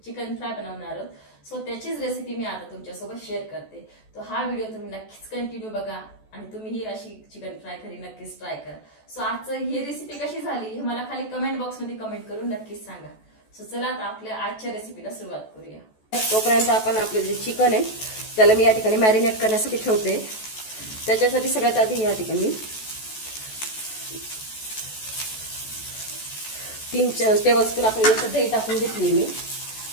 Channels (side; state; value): right; late; 14 ms